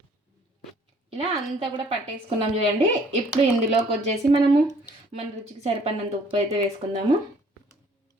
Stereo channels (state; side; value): normal; both; correlation 0.58